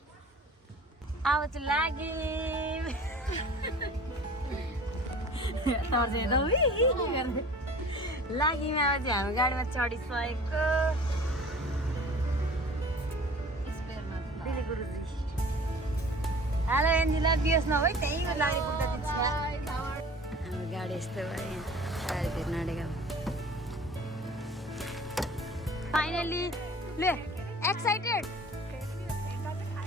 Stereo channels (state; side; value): normal; both; correlation 0.45